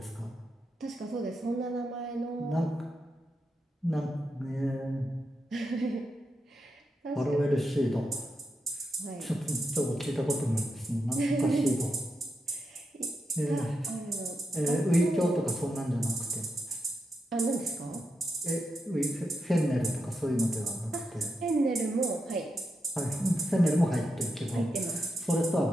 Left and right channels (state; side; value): normal; both; correlation 0.85